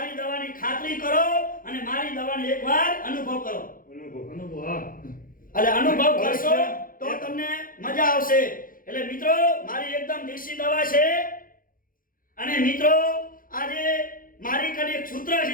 દવાની ખાતરી કરો અને મારી દવાનો એકવાર અનુભવ કરો. અનુભવ હા. એટલે અનુભવ કરશો તો તમને મજા આવશે. એટલે મિત્રો મારી એકદમ દેશી દવા છે. અને મિત્રો આજે મારી કને એક સૂત્ર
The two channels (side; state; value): right; late; 0.40 ms